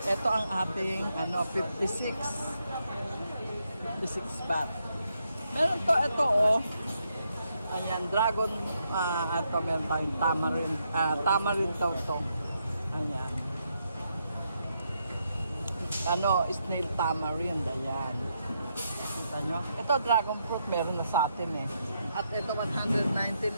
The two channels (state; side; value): inverted; both; correlation -0.79